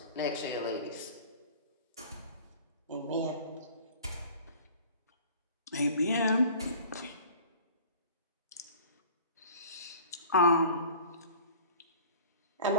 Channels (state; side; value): inverted; both; correlation -0.44